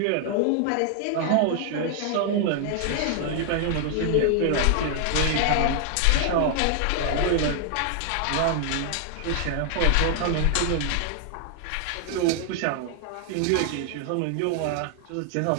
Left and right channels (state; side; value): different; both; correlation 0.00